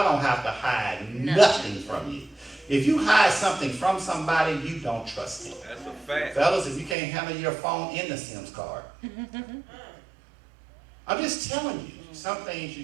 don't have to hide nothing from you. If you hide something from somebody, you don't trust him. That's a fact. Fellas, if you can't handle your phone in the SIMS card. I'm just telling you. Some things you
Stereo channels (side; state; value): left; drops out; at 7.0 s